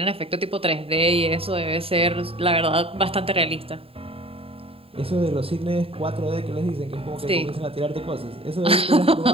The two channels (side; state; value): left; late; 0.27 ms